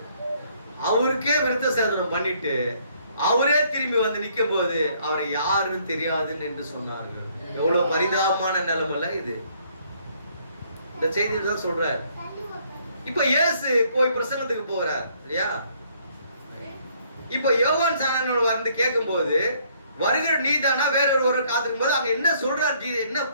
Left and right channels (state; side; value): inverted; both; correlation -0.65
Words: அவருக்கே விருத்த சேதனம் பண்ணிட்டு அவரே திரும்பி வந்து நிற்கும் போது அவரை யாருன்னு தெரியாதுன்னு என்று சொன்னார்கள். எவ்வளவு பரிதாபமான நிலைமைல இது. இந்த செய்தியை தான் சொல்றாரு. இப்ப இயேசு போய் பிரசங்கத்துக்கு போறார் இல்லையா? இப்ப யோவான் சாணனோட வந்து கேட்கும் போது வருகிற நீதானா வேற ஒருவர் காத்திருக்கும் போது அங்க என்ன சொல்றாரு? என்ன